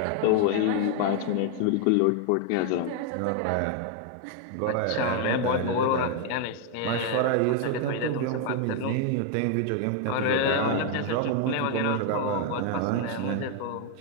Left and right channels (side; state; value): both; different; correlation 0.00